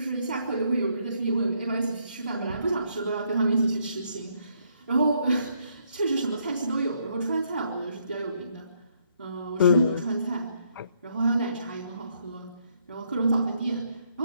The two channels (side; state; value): both; inverted; correlation -0.72